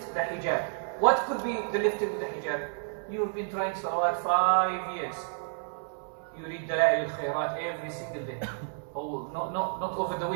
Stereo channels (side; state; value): left; silent; 58 dB below the other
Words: the hijab. What could be the lifting of the hijab? You have been trying salawat 5 years. You read Dalail al-Khairat every single day. Oh, not over the